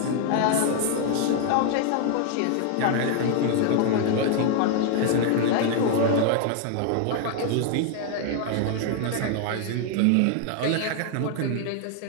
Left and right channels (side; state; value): both; different; correlation 0.00